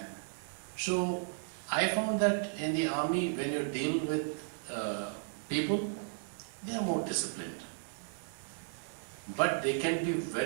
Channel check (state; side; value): silent; left; digital silence